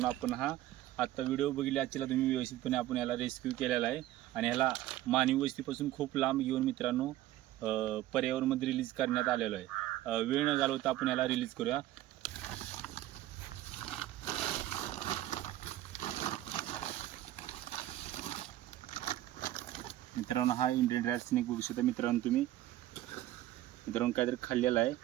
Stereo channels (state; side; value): quieter; left; 14.5 dB